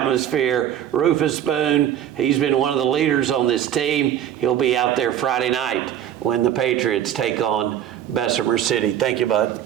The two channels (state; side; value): quieter; left; 10.5 dB